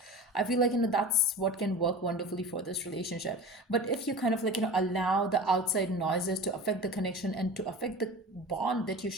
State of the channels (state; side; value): normal; both; correlation 0.33